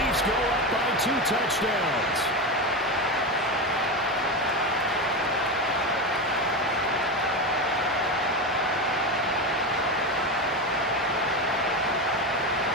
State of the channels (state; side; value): normal; both; correlation 0.17